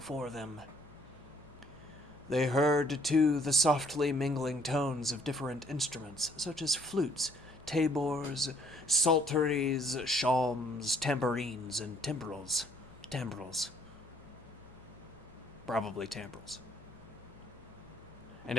them. They heard, too, the softly mingling tones of different instruments, such as flutes, tabors, psalteries, shawms, tambourines, and timbrels. Probably timbrels. And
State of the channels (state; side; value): normal; both; correlation 0.62